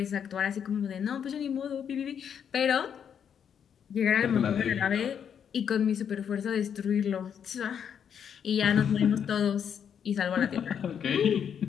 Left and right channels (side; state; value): right; quieter; 8.1 dB